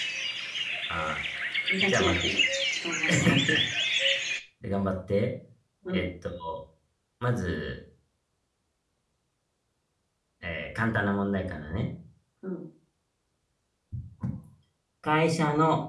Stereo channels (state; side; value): identical; both; correlation 1.00